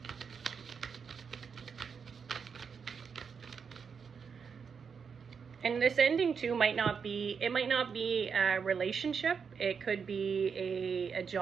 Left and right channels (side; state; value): left; quieter; 6.2 dB